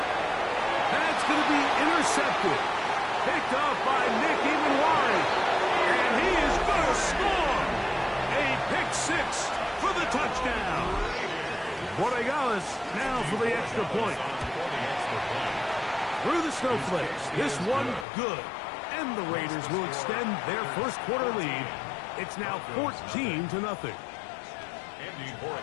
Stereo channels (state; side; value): drops out; right; at 18.1 s